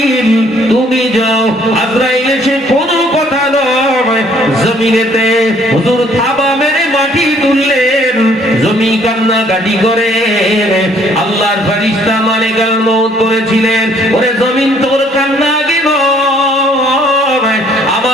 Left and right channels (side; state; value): both; normal; correlation 0.62